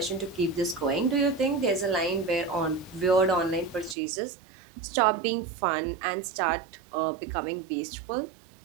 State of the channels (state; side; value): drops out; left; at 4.0 s